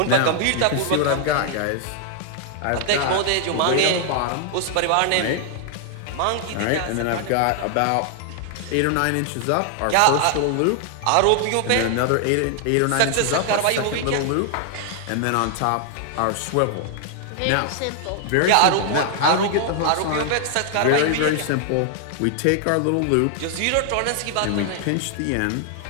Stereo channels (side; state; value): both; different; correlation 0.00